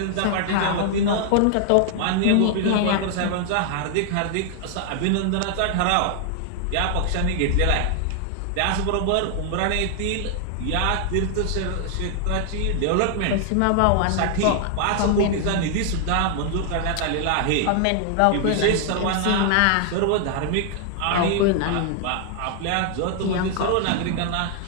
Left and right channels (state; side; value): different; both; correlation 0.00